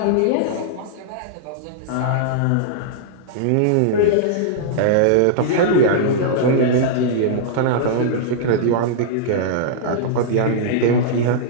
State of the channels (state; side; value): different; both; correlation -0.02